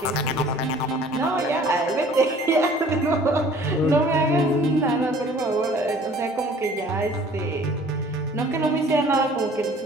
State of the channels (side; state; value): both; normal; correlation 0.51